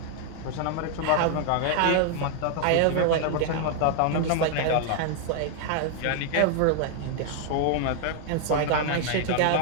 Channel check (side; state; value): both; different; correlation 0.00